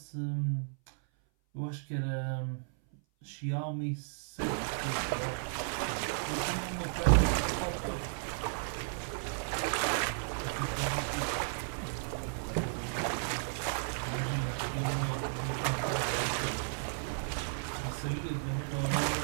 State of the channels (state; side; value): silent; left; 55 dB below the other